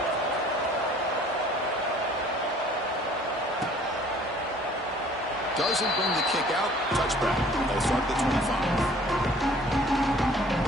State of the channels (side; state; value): both; normal; correlation 0.54